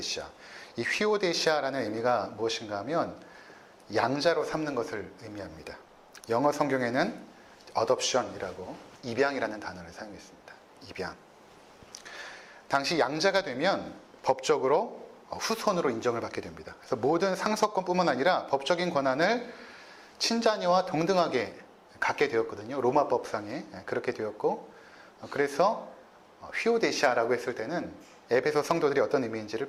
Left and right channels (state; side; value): identical; both; correlation 1.00